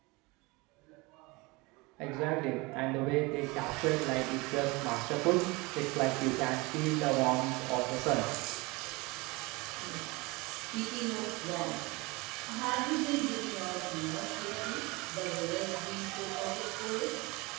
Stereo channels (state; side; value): quieter; left; 24.7 dB